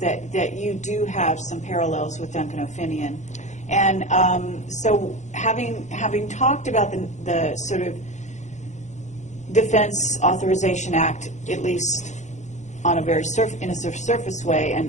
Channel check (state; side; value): late; right; 0.34 ms